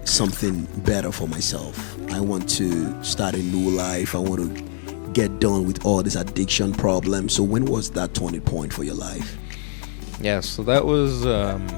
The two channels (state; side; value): silent; right; 63 dB below the other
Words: something better for myself. I want to start a new life. I want to get done with all this addiction problem. So when was that turning point for your life? Yeah, so that was